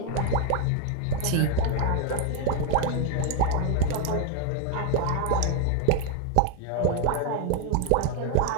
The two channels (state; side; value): different; both; correlation 0.01